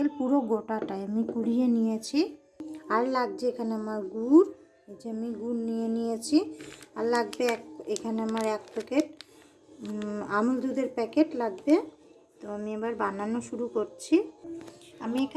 পুরো গোটাটাই আমি কুড়িয়ে নিয়েছি। আর লাগছে এখানে আমার গুড়, এই যে আমি গুড় নিয়ে নিয়েছি। আর লাগবে এখানে আমার 1 প্যাকেট আমুল দুধের প্যাকেট লাগবে। তো আমি এবার বানানো শুরু করছি। আমি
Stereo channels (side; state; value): both; identical; correlation 1.00